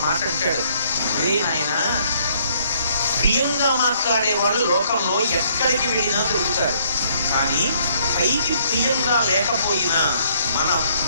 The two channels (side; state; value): both; inverted; correlation -0.65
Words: మాట అంటాడు, రే నాయన, ప్రియంగా మాట్లాడేవాడు లోకంలో ఎక్కడికి వెళ్ళినా దొరుకుతాడు, కానీ పైకి ప్రియంగా లేకపోయినా మన